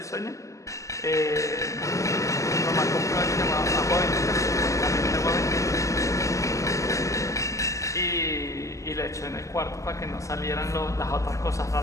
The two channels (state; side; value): late; right; 0.16 ms